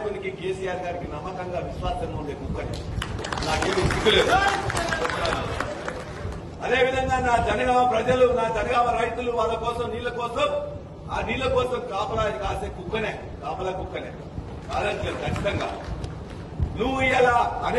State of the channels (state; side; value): identical; both; correlation 1.00